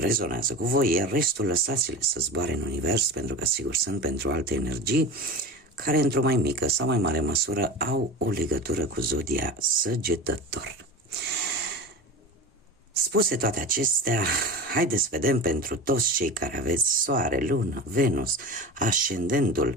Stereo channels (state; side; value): normal; both; correlation 0.30